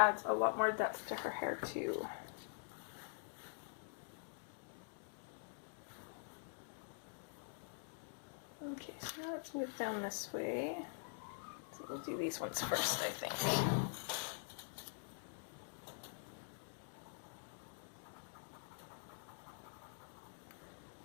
a lot more depth to her hair too. Okay, so now let's move down this way. So we'll do these ones first, I think.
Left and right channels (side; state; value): right; silent; digital silence